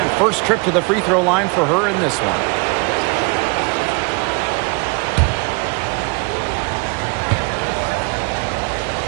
first trip to the free throw line for her in this one.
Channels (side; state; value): left; quieter; 30.3 dB